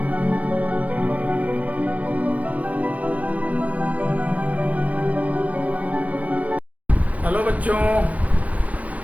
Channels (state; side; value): late; left; 0.069 ms